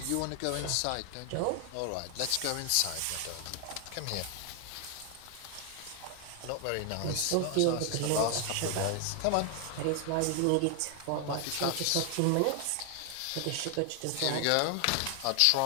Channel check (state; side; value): different; both; correlation 0.00